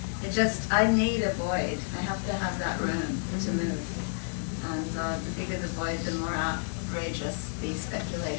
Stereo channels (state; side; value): silent; right; 58 dB below the other